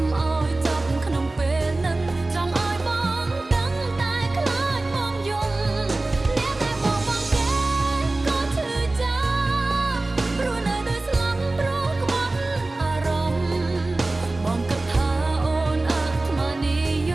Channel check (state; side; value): quieter; left; 3.0 dB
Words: ឲ្យចប់ក្នុងពេលនឹងចង់ឲ្យបងដឹងតែខ្លាចបងយំអ្នកដែលបងមកគេក៏ឈឺចាប់ព្រោះនៅតែស្លាប់ព្រោះក្បត់អារម្មណ៍បងគិតថាអូនអាត្មានិយ